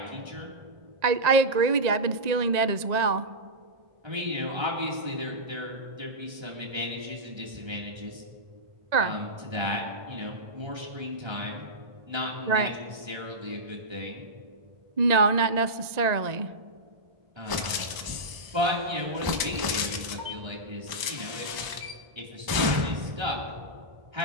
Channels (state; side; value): late; left; 1.0 ms